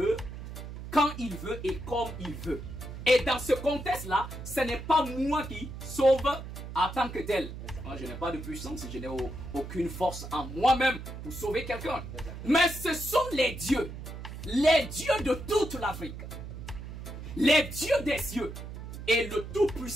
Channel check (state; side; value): noise; right; hum, 10 dB below the sound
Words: quand il veut et comme il veut. Et dans ce contexte-là, ce n'est pas moi qui sauve en tant que tel. Moi, je n'ai pas de puissance, je n'ai aucune force en moi-même pour sauver quelqu'un. Mais ce sont les dieux de toute l'Afrique. Les dieux des cieux et le